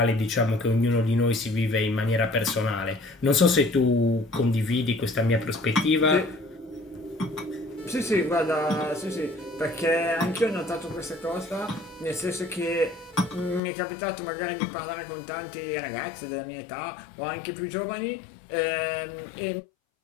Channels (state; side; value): drops out; right; at 13.6 s